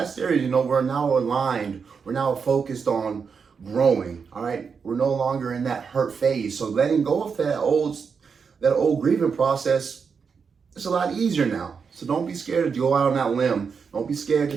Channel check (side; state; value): left; quieter; 5.9 dB